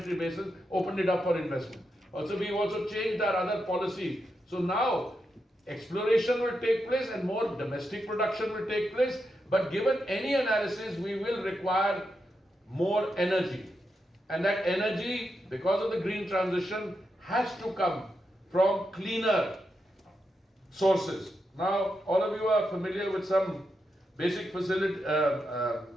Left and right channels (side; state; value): both; normal; correlation 0.85